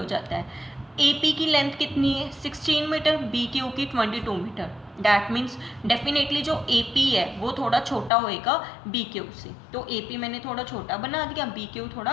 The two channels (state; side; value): drops out; right; at 8.1 s